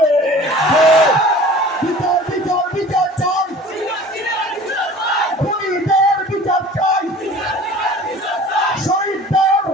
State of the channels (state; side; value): normal; both; correlation 0.44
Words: বিচার বিচার বিচার চাই, খুনিদের বিচার চাই, শহীদদের